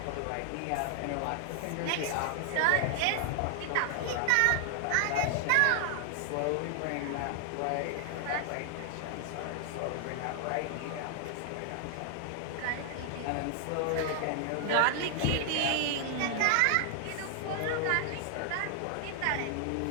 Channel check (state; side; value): different; both; correlation 0.00